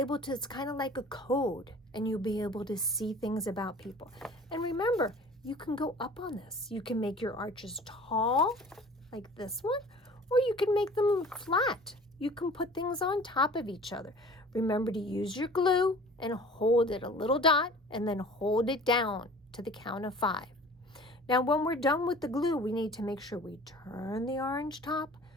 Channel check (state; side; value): normal; both; correlation 0.45